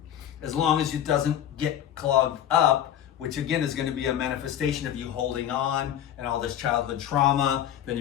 as long as it doesn't get clogged up, which again is going to be a manifestation of you holding on and all this childhood trauma. Then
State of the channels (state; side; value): quieter; right; 10.6 dB